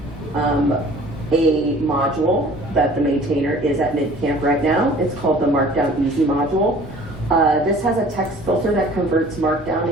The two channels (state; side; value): normal; both; correlation 0.49